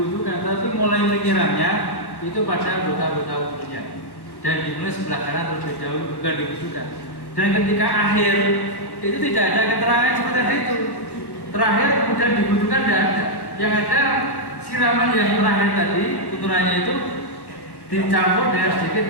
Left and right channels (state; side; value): late; right; 1.1 ms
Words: tapi mulai menyiramnya itu pada anggota-anggota wudhunya dan dimulai sebelah kanan terlebih dahulu, bukan diwudukan. Dan ketika akhir itu tidak ada keterangan seperti tadi itu. Terakhir kemudian diwudukan tidak ada. Yang ada siraman yang terakhir tadi tuntunannya itu dicampur dengan sedikit